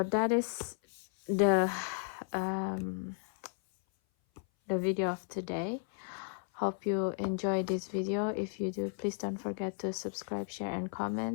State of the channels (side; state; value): right; silent; 55 dB below the other